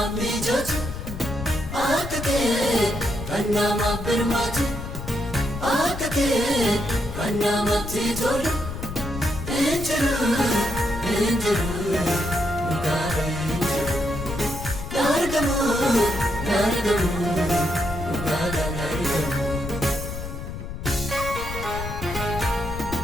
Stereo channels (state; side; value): noise; left; rumble, 8 dB below the sound